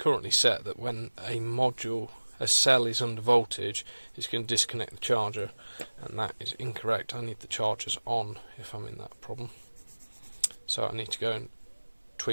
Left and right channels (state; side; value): inverted; both; correlation -1.00